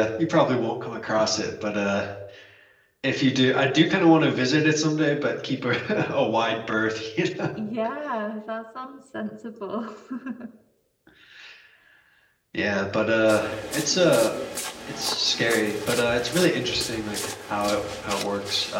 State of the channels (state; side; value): identical; both; correlation 1.00